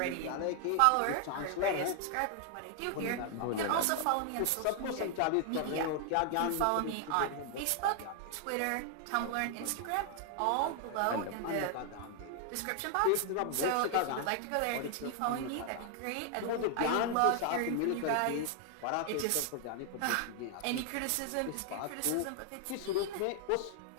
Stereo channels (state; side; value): different; both; correlation 0.00